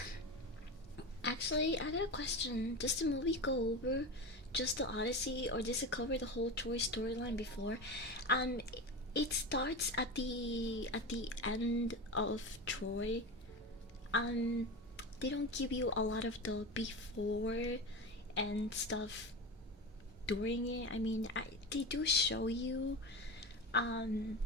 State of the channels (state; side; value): normal; both; correlation 0.24